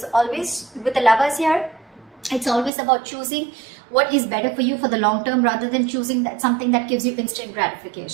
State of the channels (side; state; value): left; drops out; at 2.7 s